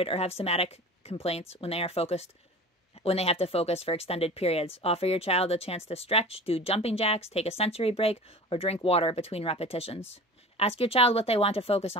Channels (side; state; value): both; normal; correlation 0.38